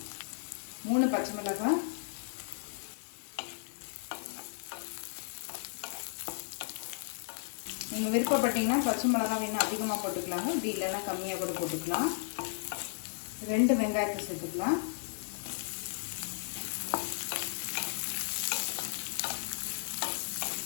3 பச்சை மிளகாய், நீங்கள் விருப்பப்பட்டீங்கன்னா பச்சை மிளகாய் இன்னும் அதிகமாக போட்டுக்கலாங்க, இப்படி இல்லைன்னா கம்மியாக கூட போட்டுக்கலாம். 2 வெங்காயத்தை சேர்த்துக்கலாம்.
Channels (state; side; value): silent; right; digital silence